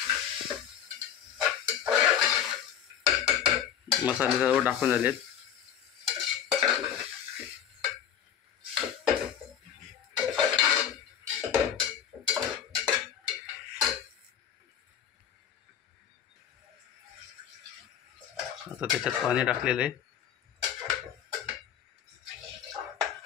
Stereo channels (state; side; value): quieter; right; 9.1 dB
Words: मसाले सर्व टाकून झालेत. आता त्याच्यात पाणी टाकलेलं आहे.